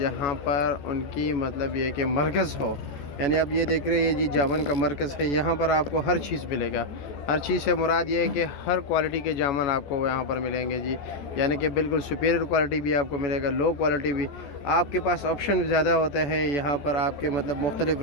पर उनकी मतलब ये कि मरकज़ हो, यानी अब ये देख रहे हैं जी जामन का मरकज़ है। यहाँ पर आपको हर चीज़ मिलेगा। हर चीज़ से मुराद ये है कि हर क्वालिटी के जामन आपको यहाँ पर मिलेंगे जी। यानी कि बिल्कुल सुपीरियर क्वालिटी भी आपको मिलेगा, लो क्वालिटी भी। आपके पास ऑप्शन ज़्यादा होता है यहाँ पर, आपके मतलब मुख्तलिफ़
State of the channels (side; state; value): right; late; 14 ms